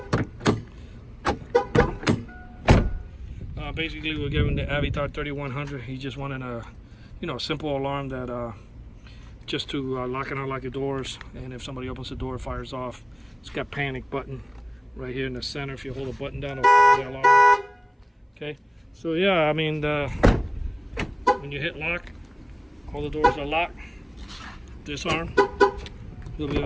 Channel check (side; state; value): both; identical; correlation 1.00